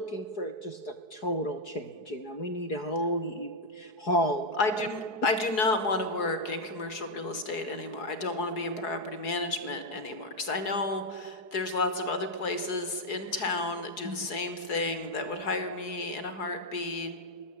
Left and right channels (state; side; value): late; right; 4.7 ms